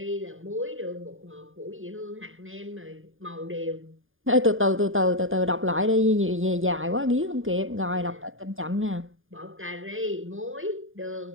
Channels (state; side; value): late; left; 0.59 ms